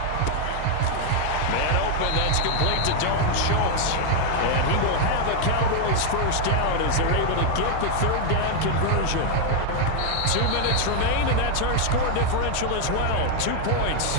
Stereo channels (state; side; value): different; both; correlation 0.00